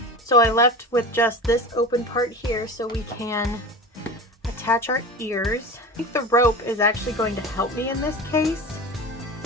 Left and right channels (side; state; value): both; normal; correlation 0.31